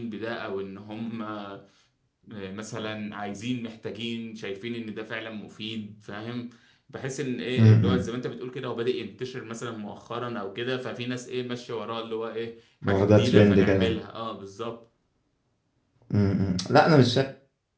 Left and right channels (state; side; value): identical; both; correlation 1.00